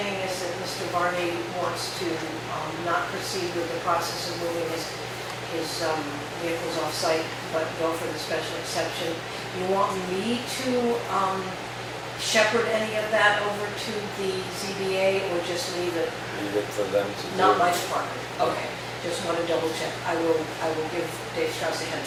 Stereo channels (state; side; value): identical; both; correlation 1.00